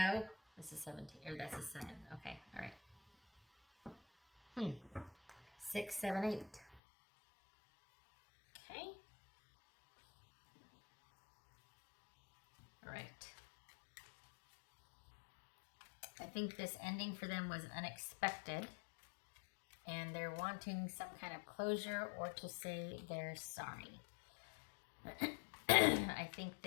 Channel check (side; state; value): right; drops out; at 6.8 s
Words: this is 17, or that's a 7. Okay, all right. 6, 7, 8. Okay. All right. I think this ending for them was unexpected, and they're wanting some kind of closure or to say they're sorry. I think